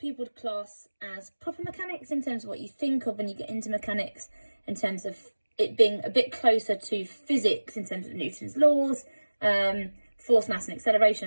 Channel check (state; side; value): inverted; both; correlation -1.00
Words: would class as proper mechanics, in terms of what you think of when you get into mechanics, in terms of it being a bit closer to physics in terms of Newton's laws, force, mass and acceleration